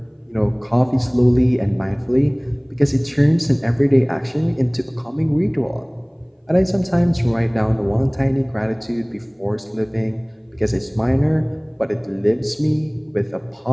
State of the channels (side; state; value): both; identical; correlation 1.00